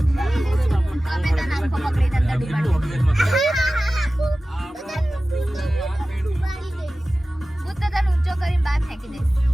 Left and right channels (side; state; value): both; normal; correlation 0.96